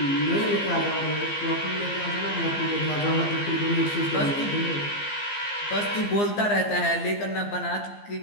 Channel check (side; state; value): right; late; 15 ms